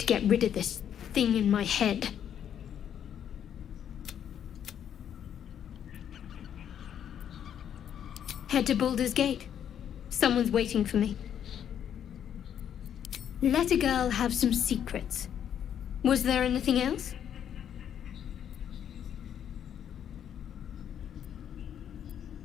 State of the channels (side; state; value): right; quieter; 9.3 dB